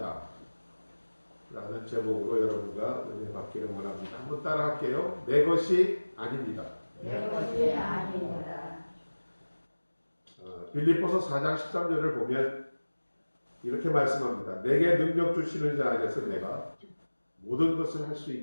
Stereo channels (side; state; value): both; inverted; correlation -1.00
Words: 라는 제목으로 여러분과 은혜 받기를 원합니다. 한번 따라 할게요. 내 것이 아닙니다. 내 것이 아닙니다. 빌립보서 4장 13절을 보면 이렇게 말씀합니다. 내게 능력 주시는 자 안에서 내가 모든 것을 할 수